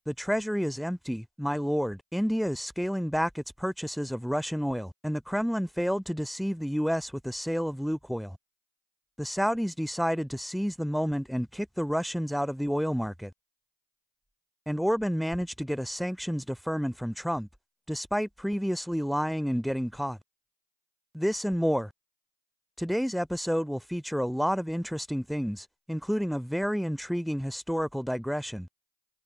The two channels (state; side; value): identical; both; correlation 1.00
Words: The treasury is empty, my lord. India is scaling back its purchases of Russian oil, and the Kremlin failed to deceive the US with the sale of Lukoil. The Saudis decided to seize the moment and kick the Russians out of the oil market. And Orban managed to get a sanctions deferment from Trump, despite previously lying and getting caught. This and more. Today's episode will feature a lot of interesting things, including a very intriguing historical digression.